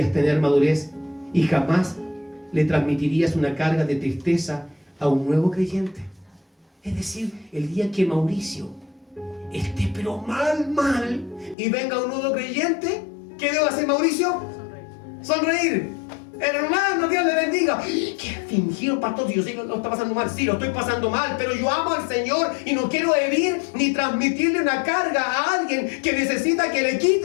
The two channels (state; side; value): drops out; right; at 11.6 s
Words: tener madurez y jamás le transmitirías una carga de tristeza a un nuevo creyente. Es decir, el día que Mauricio esté pero mal, y venga un nuevo creyente, ¿qué debo hacer, Mauricio? Sonreír. Hermano, Dios le bendiga. ¿Qué fingido, pastor? Si yo sé que lo está pasando mal. Sí, lo estoy pasando mal, pero yo amo al Señor y no quiero herir ni transmitirle una carga a alguien que necesita que le